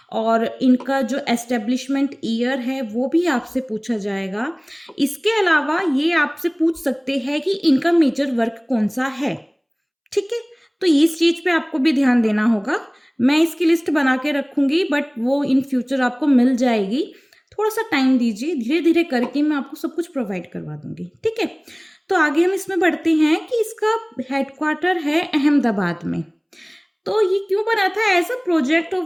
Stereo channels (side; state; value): both; identical; correlation 1.00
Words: और इनका जो एस्टेब्लिशमेंट ईयर है वो भी आपसे पूछा जाएगा। इसके अलावा ये आपसे पूछ सकते हैं कि इनका मेजर वर्क कौन सा है। ठीक है? तो इस चीज़ पे आपको भी ध्यान देना होगा। मैं इसकी लिस्ट बना के रखूँगी, बट वो इन फ्यूचर आपको मिल जाएगी। थोड़ा-सा टाइम दीजिए, धीरे-धीरे करके मैं आपको सब कुछ प्रोवाइड करवा दूँगी, ठीक है? तो आगे हम इसमें बढ़ते हैं कि इसका हेडक्वार्टर है अहमदाबाद में। तो ये क्यों बना था? As a project of